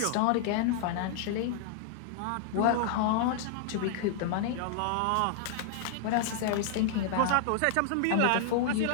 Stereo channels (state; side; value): different; both; correlation -0.01